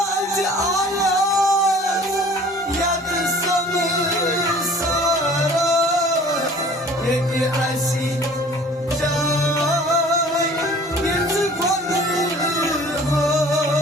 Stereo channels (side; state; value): both; normal; correlation 0.48